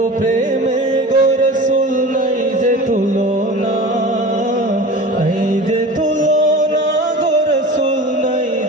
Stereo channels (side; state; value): both; normal; correlation 0.35